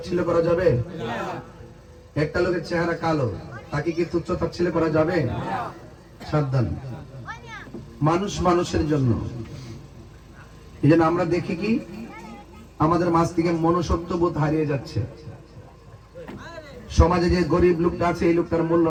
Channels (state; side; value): identical; both; correlation 1.00